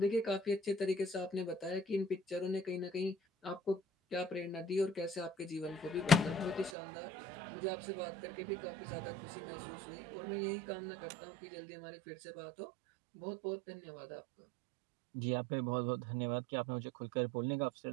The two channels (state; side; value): drops out; left; at 6.7 s